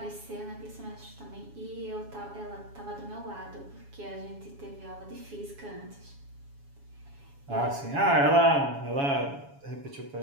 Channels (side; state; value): left; late; 7.2 ms